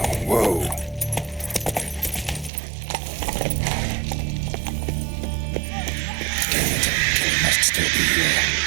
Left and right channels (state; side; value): drops out; left; at 2.5 s